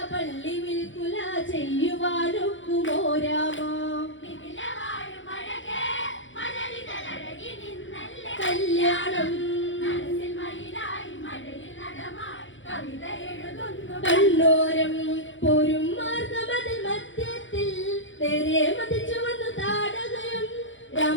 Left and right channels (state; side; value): late; right; 0.56 ms